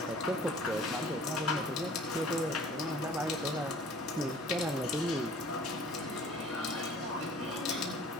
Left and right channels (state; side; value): normal; both; correlation 0.50